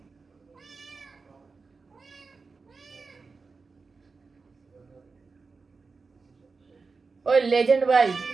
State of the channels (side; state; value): left; quieter; 4.4 dB